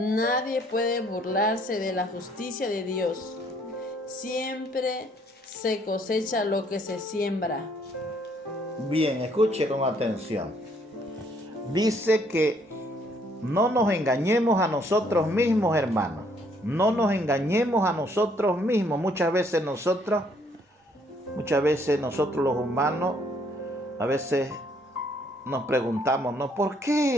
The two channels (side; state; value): both; normal; correlation 0.66